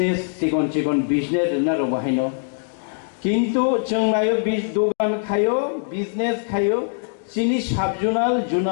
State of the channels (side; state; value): right; silent; digital silence